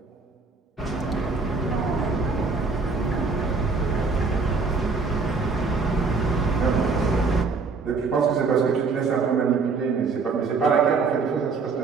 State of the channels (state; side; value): quieter; left; 4.5 dB